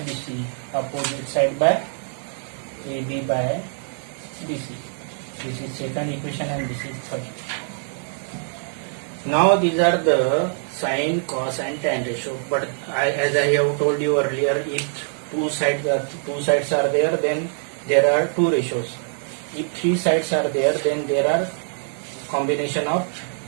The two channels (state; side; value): silent; left; 63 dB below the other